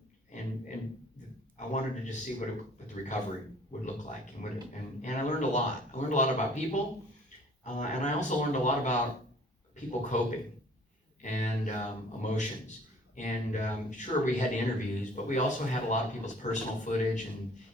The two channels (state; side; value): normal; both; correlation 0.53